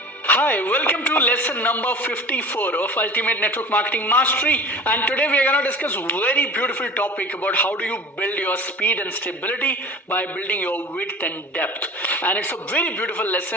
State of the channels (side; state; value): both; normal; correlation 0.38